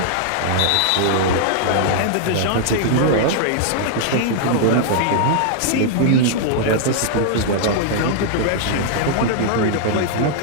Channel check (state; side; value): different; both; correlation -0.01